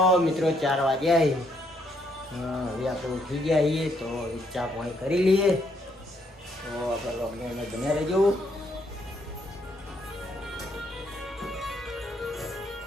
મિત્રો 4 વાગ્યા હવે આપણે ઉઠી ગયા છીએ તો ચા પાણી કરી લઈએ. તો આપણે લોકડાઉન બન્યા રહેજો.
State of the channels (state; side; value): normal; both; correlation 0.72